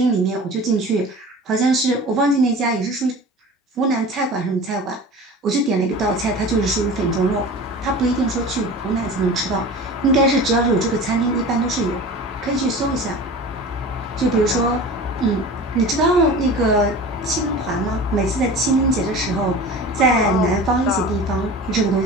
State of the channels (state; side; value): normal; both; correlation 0.36